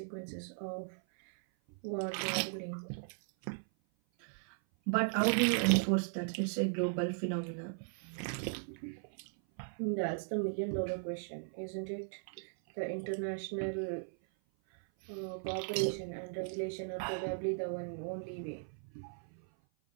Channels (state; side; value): silent; left; 53 dB below the other